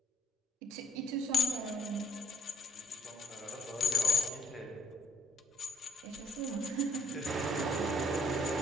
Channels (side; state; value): both; normal; correlation 0.65